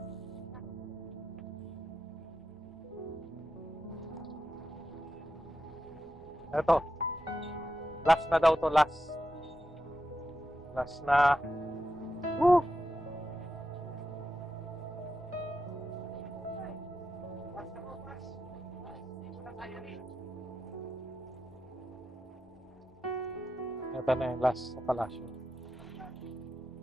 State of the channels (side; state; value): both; normal; correlation 0.88